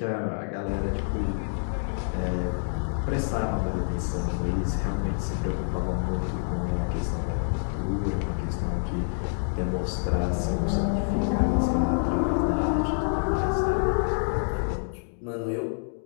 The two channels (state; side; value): silent; right; digital silence